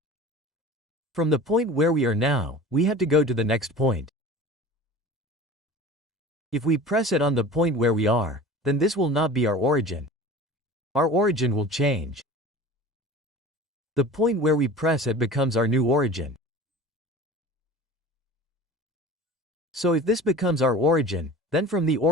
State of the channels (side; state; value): both; normal; correlation 0.39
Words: From the point where we are now, we have to go to the next point. If we press it on the point where we are, then this will not be our origin. Our origin will change. The point where we press it becomes our new origin. So if this becomes our origin, then from the